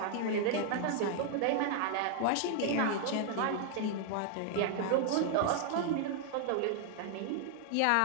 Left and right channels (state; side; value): different; both; correlation 0.00